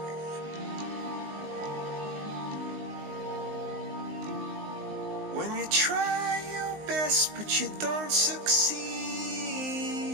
When you try your best but you don't succeed.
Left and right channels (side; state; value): left; late; 19 ms